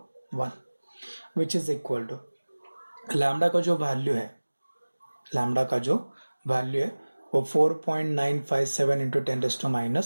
which is equal to lambda का जो वैल्यू है, लैम्डा का जो वैल्यू है वो 4.957 इंटू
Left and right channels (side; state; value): both; inverted; correlation -1.00